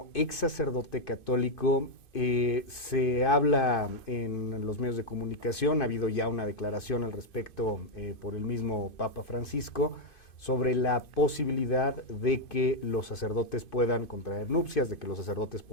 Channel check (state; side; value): late; right; 2.5 ms